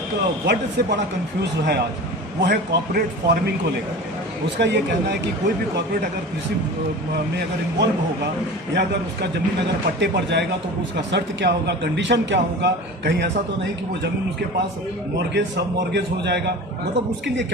वर्ड से बड़ा कंफ्यूज है आज, वो है कॉर्पोरेट फार्मिंग को लेकर। उसका ये कहना है कि कोई भी कॉर्पोरेट अगर कृषि में अगर इन्वॉल्व होगा या अगर उसका ज़मीन अगर पट्टे पर जाएगा तो उसका शर्त क्या होगा, कंडीशन क्या होगा, कहीं ऐसा तो नहीं कि वो ज़मीन उसके पास मॉर्गेज सब मॉर्गेज हो जाएगा, मतलब उसके लिए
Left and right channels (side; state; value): both; normal; correlation 0.35